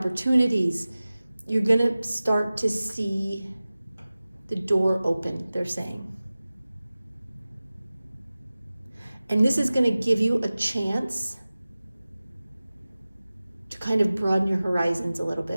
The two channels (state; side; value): inverted; both; correlation -0.97